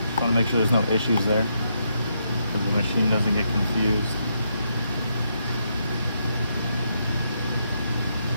want to make sure there's no issues there, so the machine doesn't get confused.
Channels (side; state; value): both; inverted; correlation -0.79